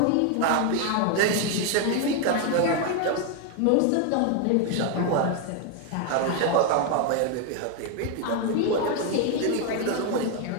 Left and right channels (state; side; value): different; both; correlation 0.01